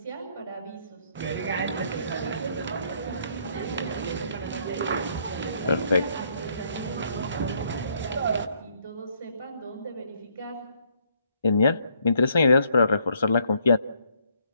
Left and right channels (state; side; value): inverted; both; correlation -0.69